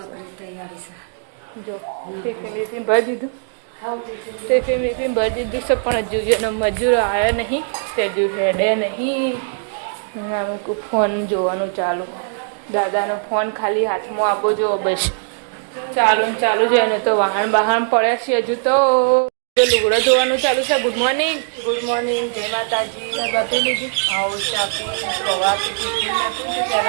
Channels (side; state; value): left; silent; digital silence